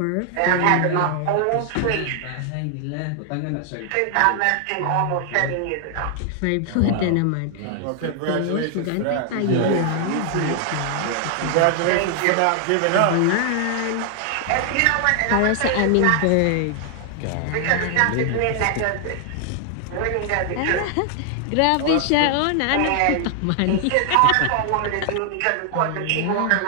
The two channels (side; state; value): both; different; correlation 0.00